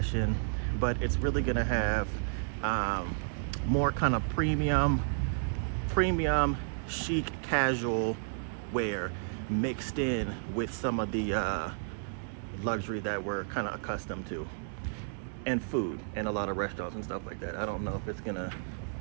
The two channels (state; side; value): silent; left; digital silence